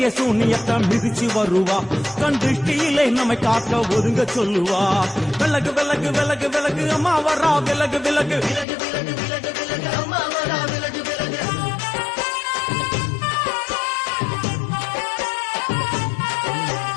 சூனியத்தை மிதிச்சு வருவா கண் திருஷ்டியிலே நம்மை காக்க ஒதுங்க சொல்லுவா விலகு விலகு விலகு விலகு அம்மா வரா விலகு விலகு அம்மா வரா விலகு விலகு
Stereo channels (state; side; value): drops out; right; at 8.7 s